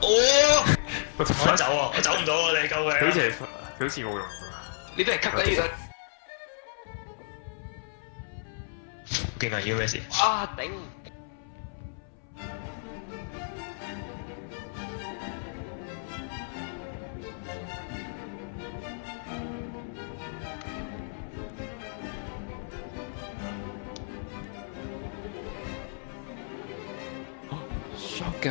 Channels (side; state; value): right; silent; 57 dB below the other